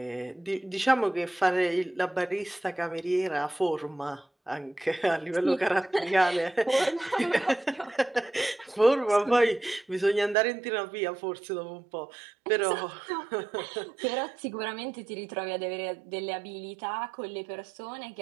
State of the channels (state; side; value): drops out; left; at 10.4 s